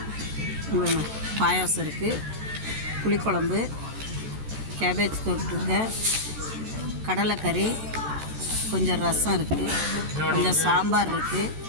இங்கே பாருங்க, பாயாசம் இருக்குது, புளிக்குழம்பு, கேபேஜ் தொட்டுங்க, கடலைக்கறி, கொஞ்சம் ரசம் இருக்குது, கொஞ்சம் சாம்பார் இருக்குது,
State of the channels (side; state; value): left; late; 14 ms